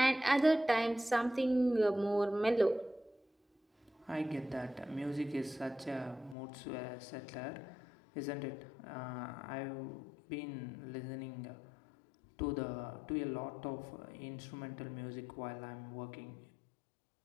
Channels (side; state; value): right; drops out; at 6.4 s